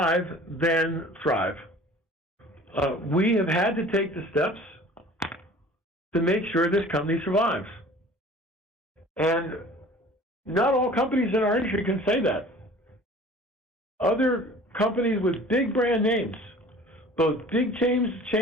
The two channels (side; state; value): both; normal; correlation 0.46